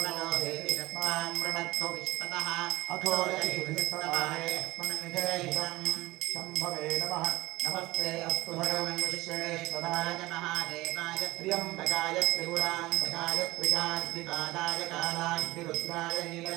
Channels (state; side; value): quieter; left; 19.3 dB